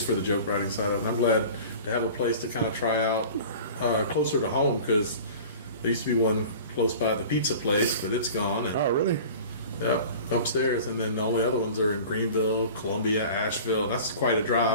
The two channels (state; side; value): inverted; both; correlation -0.40